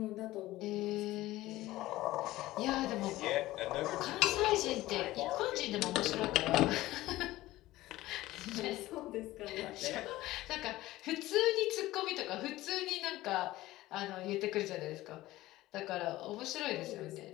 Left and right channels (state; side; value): quieter; right; 16.9 dB